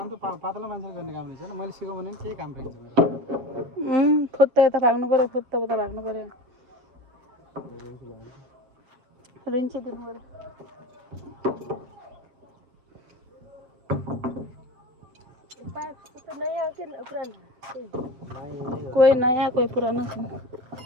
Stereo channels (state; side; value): late; left; 7.9 ms